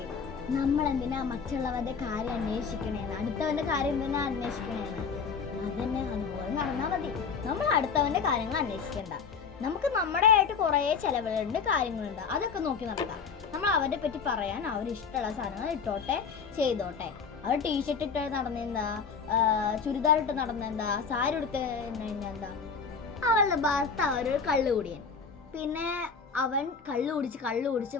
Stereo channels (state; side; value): quieter; right; 5.7 dB